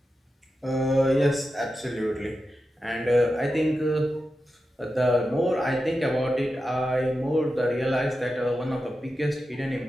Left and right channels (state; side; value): normal; both; correlation 0.90